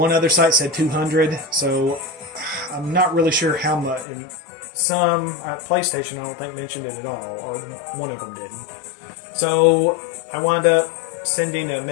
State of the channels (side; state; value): right; drops out; at 4.0 s